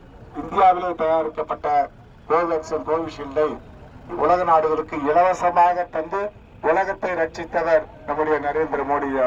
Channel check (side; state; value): both; identical; correlation 1.00